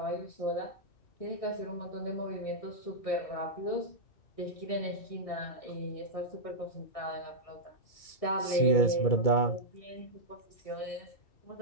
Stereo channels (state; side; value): late; right; 2.3 ms